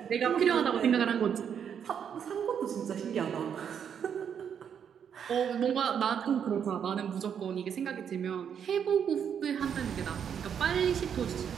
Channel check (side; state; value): left; quieter; 8.0 dB